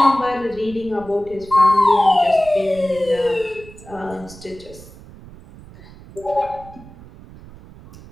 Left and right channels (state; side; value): noise; right; rumble, 19 dB below the sound